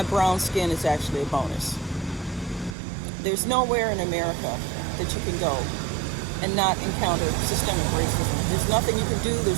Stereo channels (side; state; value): left; drops out; at 2.8 s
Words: brown skin is actually a bonus. There's nowhere in America that you can go and not encounter systemic racism. There's nothing you can do,